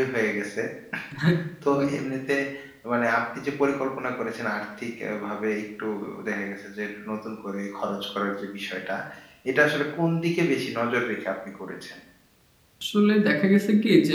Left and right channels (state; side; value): identical; both; correlation 1.00